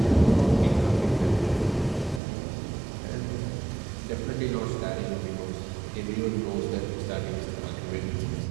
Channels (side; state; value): left; drops out; at 2.2 s